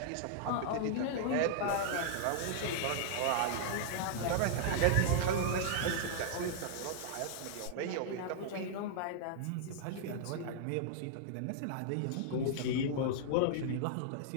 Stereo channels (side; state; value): both; different; correlation -0.01